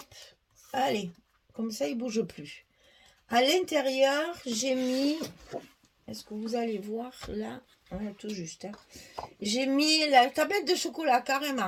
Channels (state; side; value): identical; both; correlation 1.00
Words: allez, comme ça il bouge plus. À l'intérieur, j'ai mis, est-ce que vous allez voir là, ouais, tout juste, hein. J'ai mis la tablette de chocolat